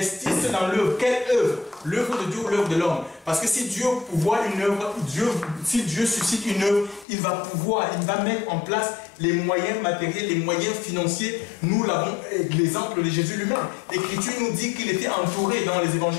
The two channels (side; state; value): right; drops out; at 7.1 s